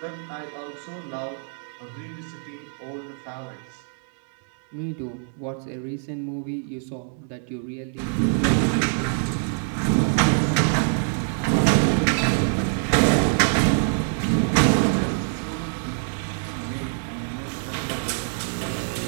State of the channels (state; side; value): silent; left; 62 dB below the other